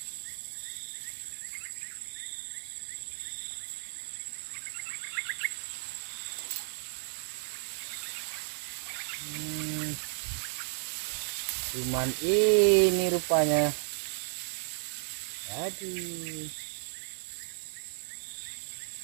Cuman ini rupanya. Aduh.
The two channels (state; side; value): silent; left; digital silence